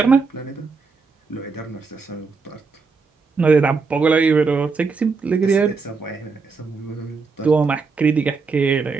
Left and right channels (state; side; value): quieter; left; 4.6 dB